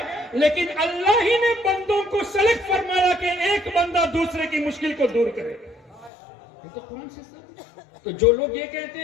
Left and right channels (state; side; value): drops out; right; at 6.1 s